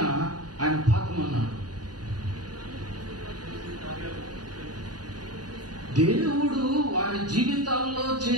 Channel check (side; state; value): left; late; 0.69 ms